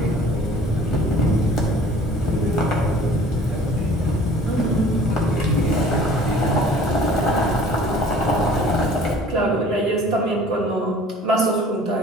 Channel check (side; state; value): both; normal; correlation 0.50